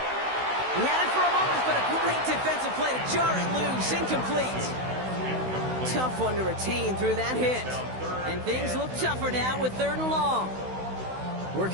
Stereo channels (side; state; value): left; late; 16 ms